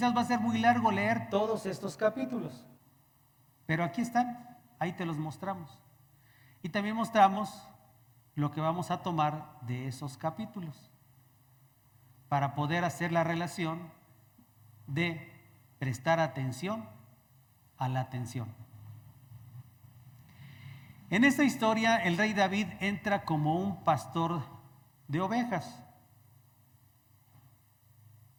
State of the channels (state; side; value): identical; both; correlation 1.00